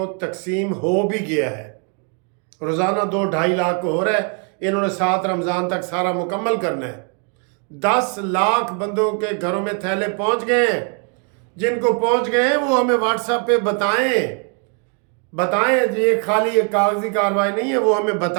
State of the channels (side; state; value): left; quieter; 38.4 dB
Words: تقسیم ہو بھی گیا ہے، روزانہ 2-2.5 لاکھ کو ہو رہا ہے، انہوں نے 7 رمضان تک سارا مکمل کرنا ہے۔ 10 لاکھ بندوں کے گھروں میں تھیلے پہنچ گئے ہیں، جن کو پہنچ گئے ہیں وہ ہمیں واٹس ایپ پہ بتائیں جی، یہ خالی ایک کاغذی کارروائی نہیں ہے، وہ ہمیں